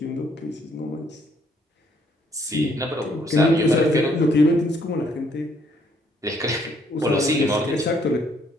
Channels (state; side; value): normal; both; correlation 0.67